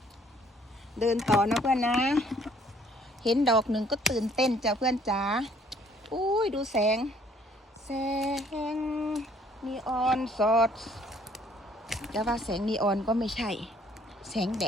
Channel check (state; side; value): normal; both; correlation 0.61